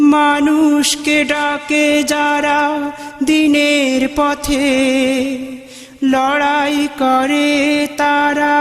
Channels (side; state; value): both; identical; correlation 1.00